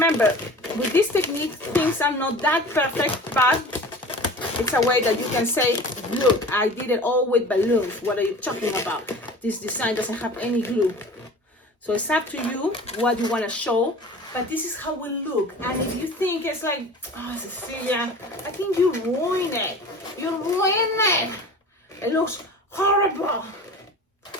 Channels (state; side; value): normal; both; correlation 0.39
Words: with this technique, things are not that perfect, but it's a way that you can say, look, I did it all with balloons. What are you talking about? This design doesn't have any glue. So it's up to you what you want to show, but this is how it will look. And if you think it's like, oh, Cecilia, I think you ruined it. You ruined it. It looks horrible.